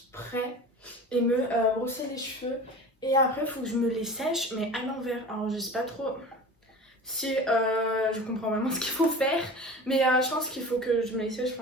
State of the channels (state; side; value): normal; both; correlation 0.36